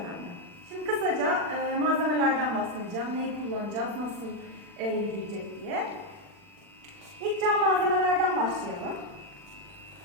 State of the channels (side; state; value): left; late; 40 ms